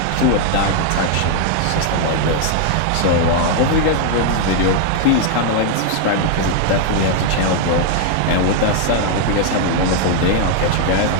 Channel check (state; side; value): different; both; correlation 0.00